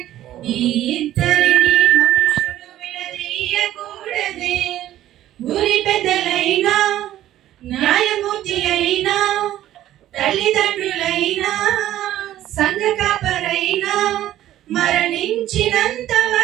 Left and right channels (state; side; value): quieter; left; 13.2 dB